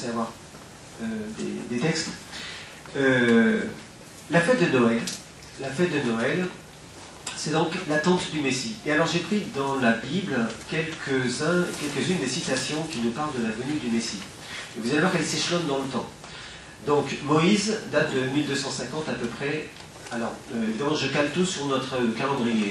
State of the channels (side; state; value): both; identical; correlation 1.00